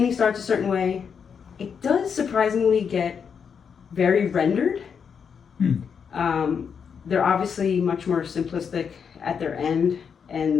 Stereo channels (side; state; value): right; quieter; 6.7 dB